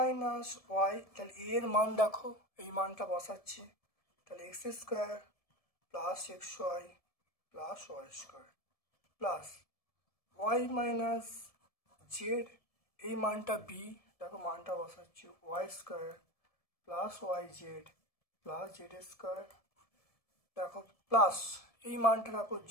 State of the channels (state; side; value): late; right; 1.7 ms